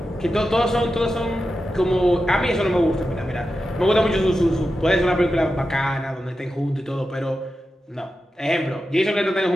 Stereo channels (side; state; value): both; normal; correlation 0.91